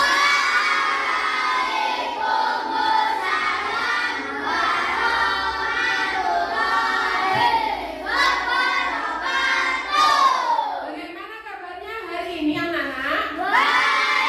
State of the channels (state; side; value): identical; both; correlation 1.00